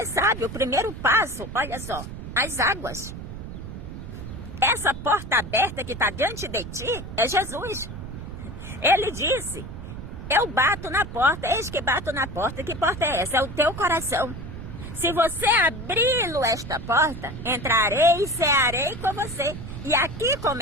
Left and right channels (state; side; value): noise; right; rumble, 10 dB below the sound